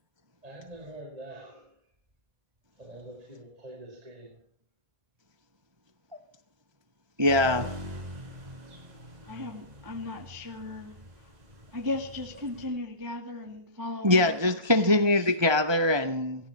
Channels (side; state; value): left; late; 1.3 ms